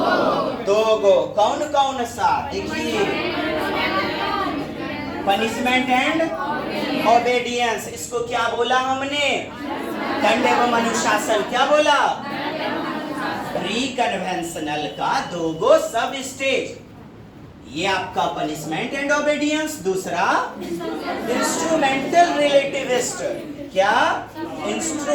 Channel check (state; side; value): identical; both; correlation 1.00